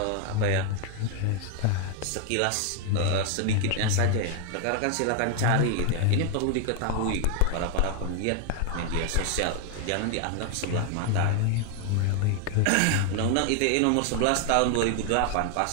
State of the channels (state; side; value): different; both; correlation 0.00